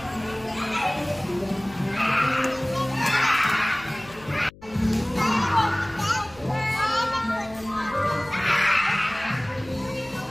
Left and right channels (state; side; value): noise; left; hum, 22 dB below the sound